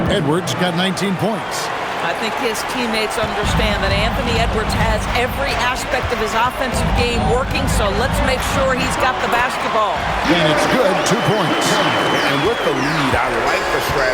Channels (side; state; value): both; identical; correlation 1.00